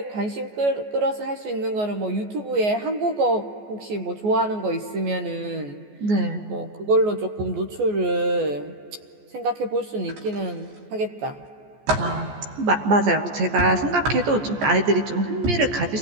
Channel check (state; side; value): late; left; 14 ms